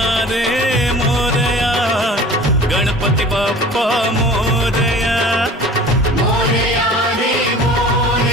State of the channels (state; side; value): normal; both; correlation 0.43